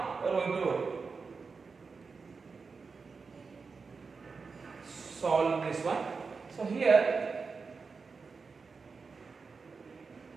we are going to solve this one. So here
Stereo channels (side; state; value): left; quieter; 4.8 dB